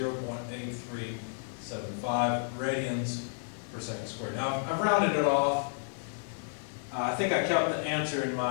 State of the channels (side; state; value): right; silent; 57 dB below the other